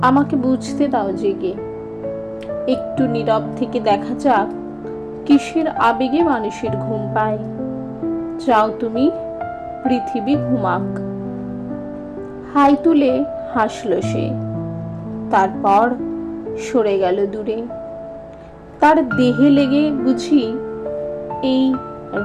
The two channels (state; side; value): identical; both; correlation 1.00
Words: আমাকে বুঝতে দাও জেগে। একটু নীরব থেকে দেখা যাক কিসের আবেগে মানুষের ঘুম পায়। চাও তুমি পৃথিবী ঘুমাক। হাই তুলে হাসল সে, তারপর সরে গেল দূরে। তার দেহে লেগে বুঝি এই